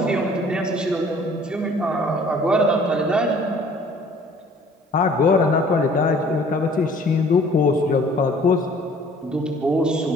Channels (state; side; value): normal; both; correlation 0.54